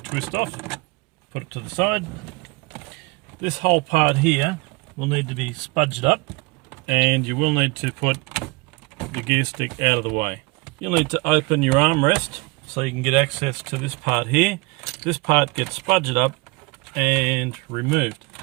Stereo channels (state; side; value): quieter; left; 25.1 dB